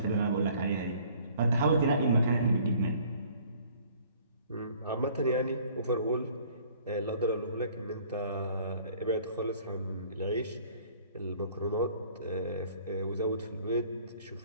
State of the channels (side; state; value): both; inverted; correlation -0.55